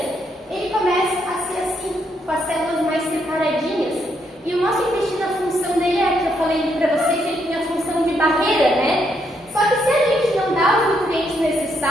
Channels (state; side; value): normal; both; correlation 0.76